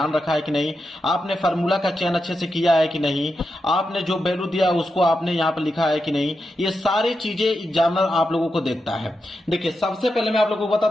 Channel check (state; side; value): normal; both; correlation 0.87